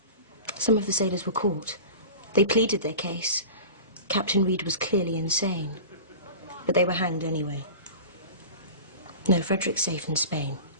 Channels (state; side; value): inverted; both; correlation -0.36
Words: Some of the sailors were caught. They pleaded their case. Captain Reed was clearly insane. But they were hanged anyway. No, Frederick's safe in Spain.